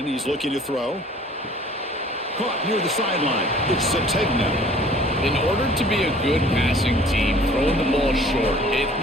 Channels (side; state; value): both; normal; correlation 0.52